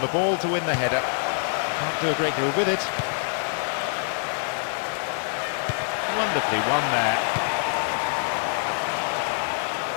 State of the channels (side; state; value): right; silent; digital silence